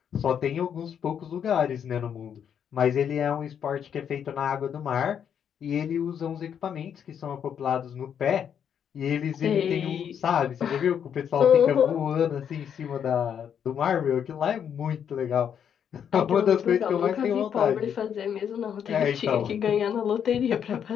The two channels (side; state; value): right; quieter; 8.3 dB